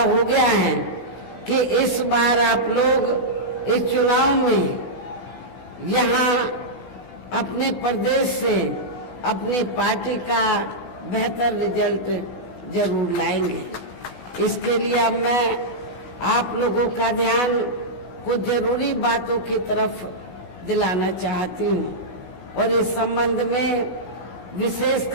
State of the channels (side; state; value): right; late; 16 ms